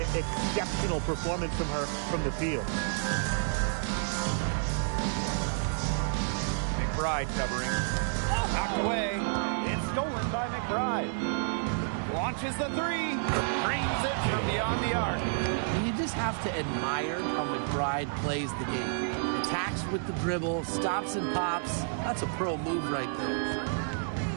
exceptional performance from her from the field. McBride covering. Knocked away. It's stolen by McBride. Launches the 3. Dreams it from beyond the arc. And you just have to admire how McBride plays the game. Attacks with the dribble, stops and pops. That's a pro move right there.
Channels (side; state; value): left; silent; 58 dB below the other